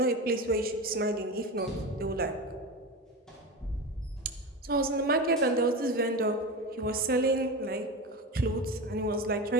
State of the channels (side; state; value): both; normal; correlation 0.24